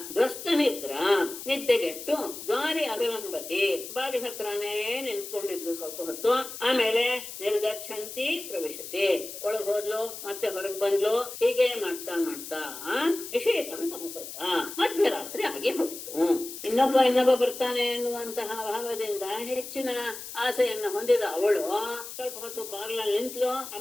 ದ್ವಸ್ತನಿದ್ರಾ ನಿದ್ದೆಗೆಟ್ಟು ದ್ವಾರಿ ಅವಲಂಬತಿ ಬಾಗಿಲ ಹತ್ರನೇ ನಿಂತ್ಕೊಂಡಿದ್ರು ಸ್ವಲ್ಪ ಹೊತ್ತು. ಆಮೇಲೆ ನಿರ್ಗಚ್ಚಂತಿ ಪ್ರವಿಶತಿ ಒಳಗ್ ಹೋದ್ಲು ಮತ್ತೆ ಹೊರಗೆ ಬಂದ್ಲು. ಹೀಗೆ ಮಾಡ್ತಾ ಮಾಡ್ತಾ ನಿಷೇಧಂ ಸಮಪದ್ಯ ಮಧ್ಯರಾತ್ರಿ ಆಗಿ ಹೋಯಿತು. ಇನ್ನೊಬ್ಬ ಬರ್ತಾನೆ ಎನ್ನುವಂತಹ ಭಾವದಿಂದ ಹೆಚ್ಚಿನ ಆಸೆಯನ್ನ ಹೊಂದಿದ ಅವಳು ಸ್ವಲ್ಪ ಹೊತ್ತು ಬಾಗಿಲಲ್ಲಿ ನಿಂತ್ಲು,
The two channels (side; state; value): left; noise; hiss, 10 dB below the sound